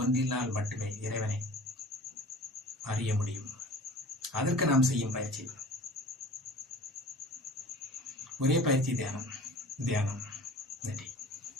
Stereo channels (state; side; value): normal; both; correlation 0.42